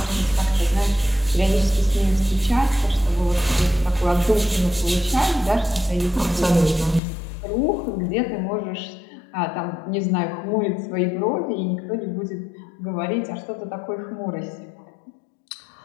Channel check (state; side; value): drops out; right; at 7.0 s